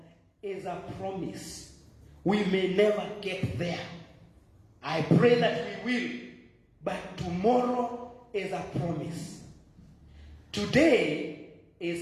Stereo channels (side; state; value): both; identical; correlation 1.00